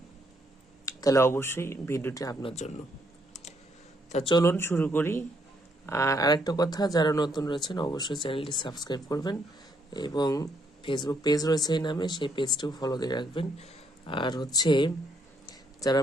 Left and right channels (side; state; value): both; normal; correlation 0.72